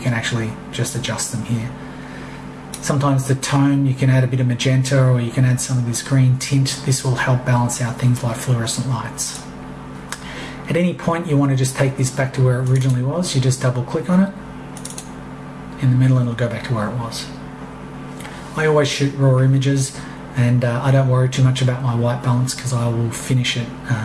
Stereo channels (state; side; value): identical; both; correlation 1.00